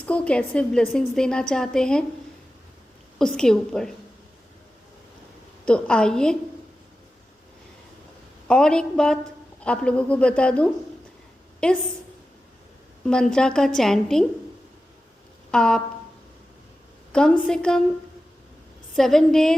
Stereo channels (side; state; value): both; normal; correlation 0.93